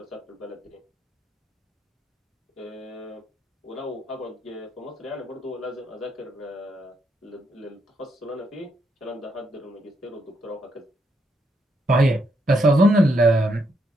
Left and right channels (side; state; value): both; normal; correlation 0.77